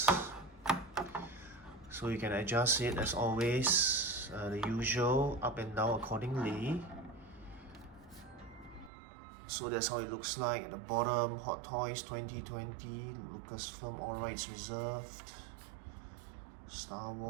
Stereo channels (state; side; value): drops out; left; at 8.9 s